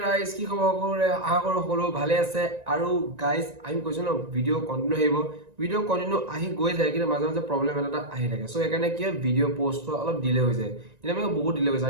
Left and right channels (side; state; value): left; late; 1.9 ms